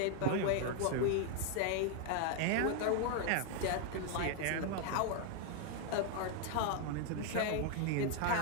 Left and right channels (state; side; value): different; both; correlation 0.00